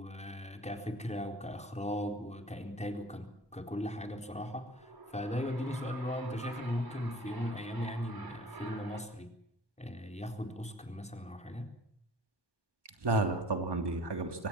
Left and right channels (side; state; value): both; normal; correlation 0.47